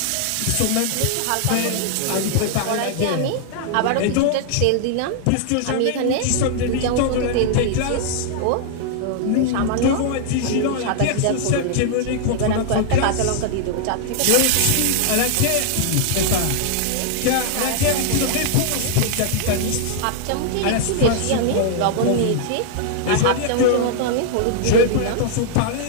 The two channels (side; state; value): both; different; correlation -0.01